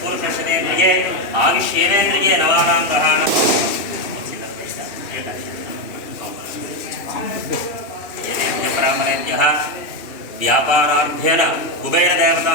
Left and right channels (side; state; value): right; late; 2.7 ms